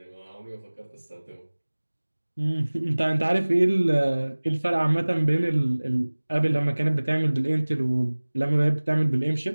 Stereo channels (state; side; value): inverted; both; correlation -1.00